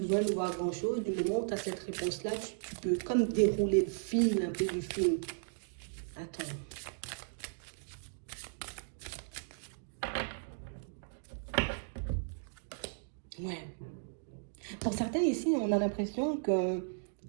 de voir grand-chose. Du moment où tu as cette réponse-là, tu peux comme dérouler le fil un peu du film. Attends. Ouais. Pour certains ici, on a l'impression que,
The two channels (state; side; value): silent; left; digital silence